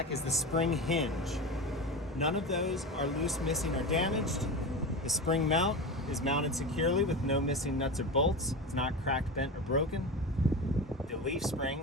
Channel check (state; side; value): normal; both; correlation 0.25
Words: is the spring hinge. None of those are loose, missing, or damaged. The spring mount is mounted securely with no missing nuts or bolts. It's not cracked, bent, or broken. The leaf